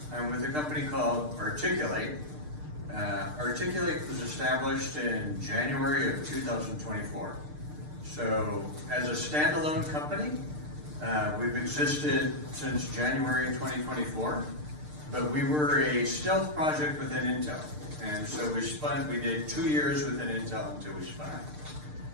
I'm with a company called Articul8. Articul8 was established in January of 2024. So as a standalone company, we've existed since January 2024, but we were a stealth project within Intel. And so we did 2 years within Intel until we spun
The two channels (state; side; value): late; left; 6.6 ms